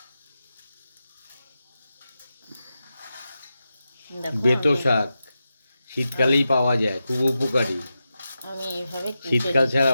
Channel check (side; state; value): both; inverted; correlation -0.90